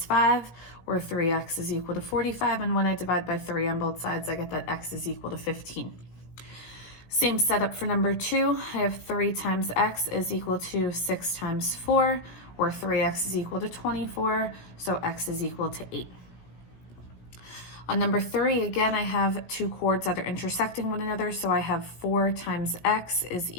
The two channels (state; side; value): late; right; 17 ms